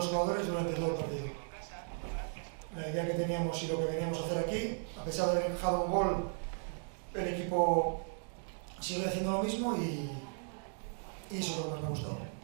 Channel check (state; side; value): silent; left; 54 dB below the other